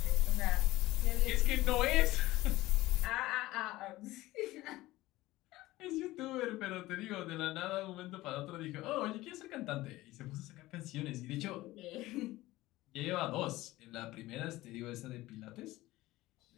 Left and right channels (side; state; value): right; quieter; 17.8 dB